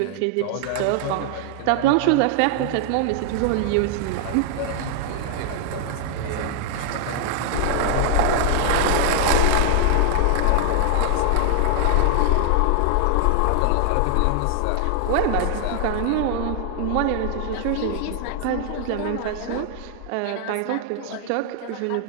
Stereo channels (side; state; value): both; different; correlation 0.00